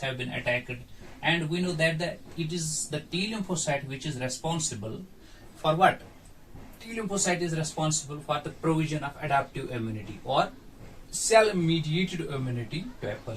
have been attacked, and we know that it is the T lymphocyte which is responsible for what? T lymphocyte is responsible for the provision of adaptive immunity or cell-mediated immunity to a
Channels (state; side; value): identical; both; correlation 1.00